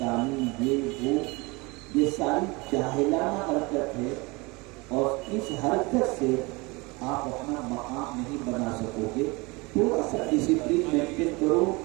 یہ وہ، یہ ساری جاہلانہ حرکت ہے، اور اس حرکت سے آپ اپنا مقام نہیں بنا سکو گے۔ تھوڑا سا ڈسپلین مینٹین کرو،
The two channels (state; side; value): quieter; left; 25.7 dB